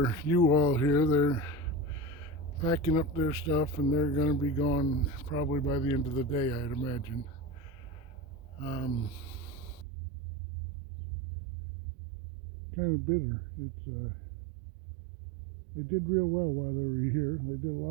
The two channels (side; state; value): left; drops out; at 9.9 s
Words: U-Haul here. They're packing up their stuff and they're going to be gone probably by the end of the day, I'd imagine. Kind of bitter. They did real well while they were here. They did a